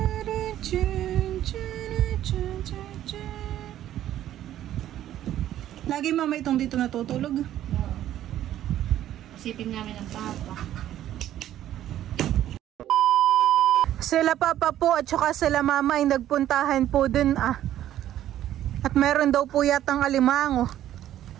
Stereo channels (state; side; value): quieter; left; 12.2 dB